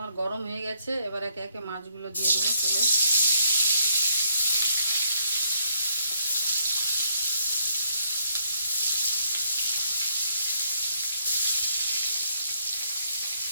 গরম হয়ে গেছে, এবার একে একে মাছগুলো দিয়ে দেবো তেলে।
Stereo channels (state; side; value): inverted; both; correlation -0.71